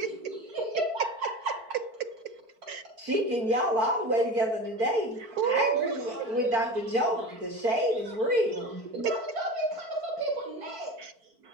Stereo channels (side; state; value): left; late; 4.5 ms